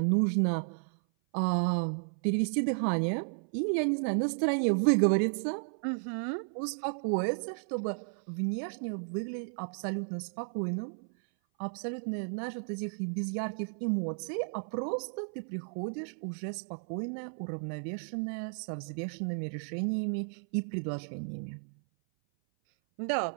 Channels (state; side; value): silent; left; 56 dB below the other